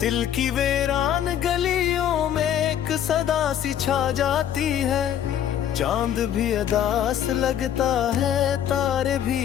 की वीरान गलियों में एक सदा सी छा जाती है। चांद भी अदास लगता है, तारे भी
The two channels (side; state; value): right; quieter; 10.1 dB